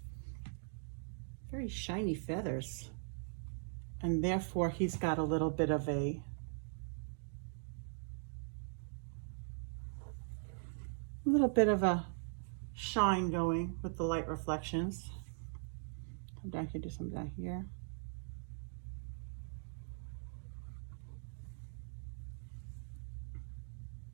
very shiny feathers, and therefore he's got a little bit of a shine going with the light reflections. Come down here, do some down here.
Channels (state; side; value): silent; left; digital silence